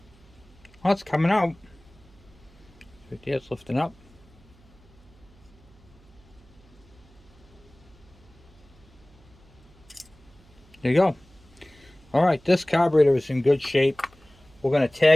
Oh, it's coming out. Right there, it's lifting up. There you go. Alright, this carburetor is in good shape. We're going to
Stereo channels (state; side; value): noise; right; hum, 27 dB below the sound